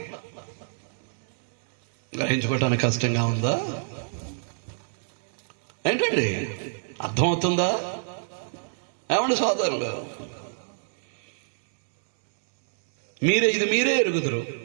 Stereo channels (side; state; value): left; silent; digital silence